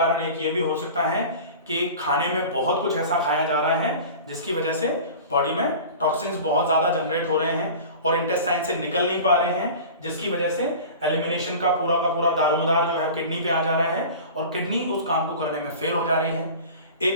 एक ये भी हो सकता है कि खाने में बहुत कुछ ऐसा खाया जा रहा है जिसकी वजह से बॉडी में टॉक्सिन्स बहुत ज्यादा जनरेट हो रहे हैं और इंटेस्टाइन से निकल नहीं पा रहे हैं, जिसकी वजह से एलिमिनेशन का पूरा दारोमदार जो है किडनी पे आ जा रहा है और किडनी उस काम को करने में फेल हो जा रही है।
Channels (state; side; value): inverted; both; correlation -0.37